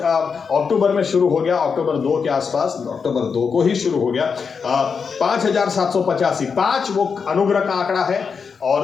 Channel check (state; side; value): quieter; right; 5.8 dB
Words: अक्टूबर में शुरू हो गया, अक्टूबर 2 के आसपास, अक्टूबर 2 को ही शुरू हो गया। 5785, 5 वो अनुग्रह का आंकड़ा है